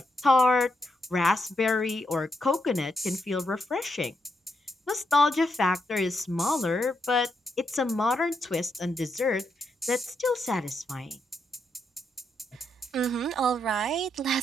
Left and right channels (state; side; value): normal; both; correlation 0.80